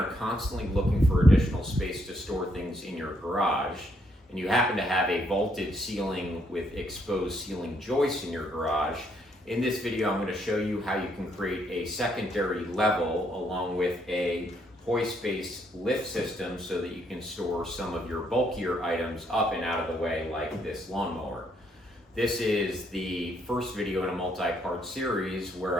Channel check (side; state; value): both; normal; correlation 0.73